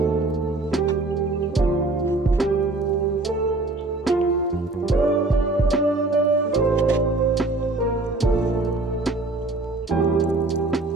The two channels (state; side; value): quieter; left; 3.1 dB